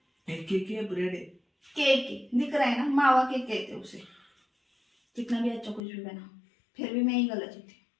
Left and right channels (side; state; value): right; drops out; at 5.8 s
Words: एक केक है, ब्रेड है। केक दिख रहा है ना, मावा केक कहते उसे। कितना भी अच्छा कुछ भी बना, फिर भी मैं ही गलत थी।